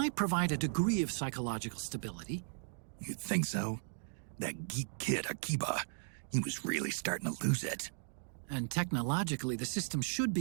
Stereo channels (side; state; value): left; silent; digital silence